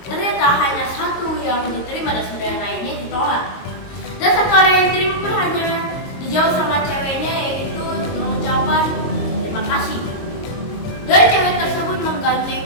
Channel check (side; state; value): right; late; 22 ms